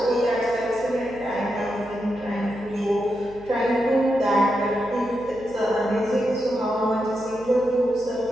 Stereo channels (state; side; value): noise; right; hum, 21 dB below the sound